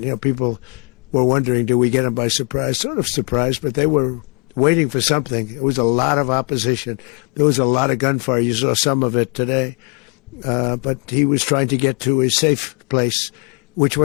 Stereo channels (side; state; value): right; quieter; 35.4 dB